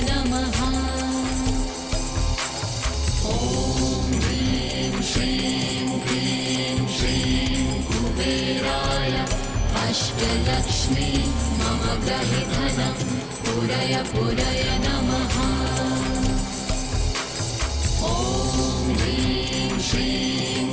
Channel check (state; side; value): identical; both; correlation 1.00